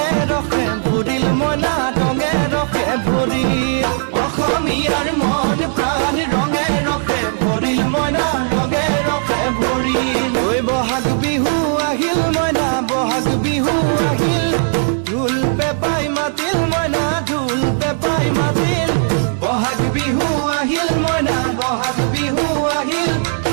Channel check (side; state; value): left; silent; digital silence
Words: ৰখে ভৰিল মইনা ৰঙে ৰখে ভৰিল অসমীয়াৰ মন প্ৰাণ ৰঙে ৰখে ভৰিল মইনা ৰঙে ৰখে ভৰিল ঐ বহাগ বিহু আহিল মইনা বহাগ বিহু আহিল ঢোল পেপাই মাতিল মইনা ঢোল পেপাই মাতিল বহাগ বিহু আহিল মইনা বহাগ বিহু আহিল